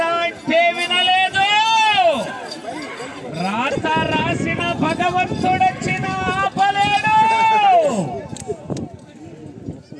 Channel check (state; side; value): identical; both; correlation 1.00